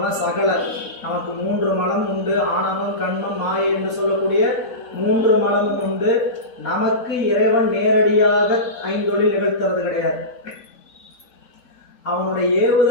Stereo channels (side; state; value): both; normal; correlation -0.20